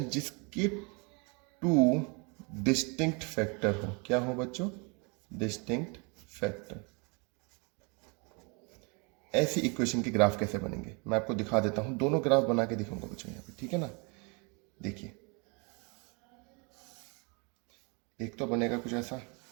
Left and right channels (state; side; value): quieter; left; 32.1 dB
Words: जिसके 2 डिस्टिंक्ट फैक्टर हो। क्या हो बच्चों? Distinct factor. ऐसी इक्वेशन के ग्राफ कैसे बनेंगे मैं आपको दिखा देता हूं, दोनों ग्राफ बना के दिखाऊंगा बच्चों यहाँ पे, ठीक है ना। देखिए एक तो बनेगा कुछ ऐसा,